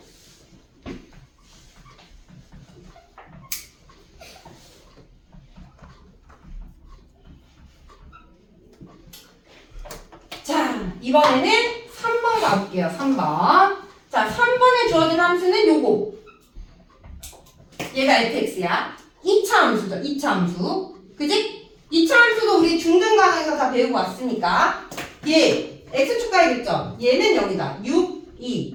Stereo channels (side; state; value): both; identical; correlation 1.00